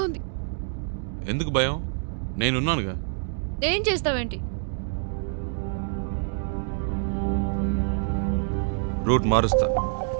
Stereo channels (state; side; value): silent; left; digital silence